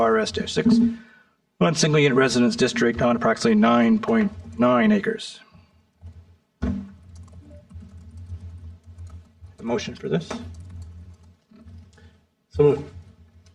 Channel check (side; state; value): both; identical; correlation 1.00